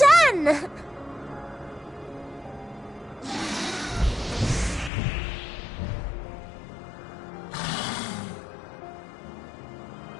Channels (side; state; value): right; drops out; at 4.9 s